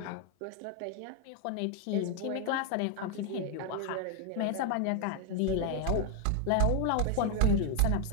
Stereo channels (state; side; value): different; both; correlation 0.00